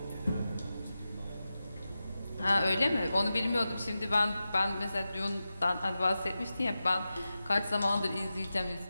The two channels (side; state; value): both; inverted; correlation -0.92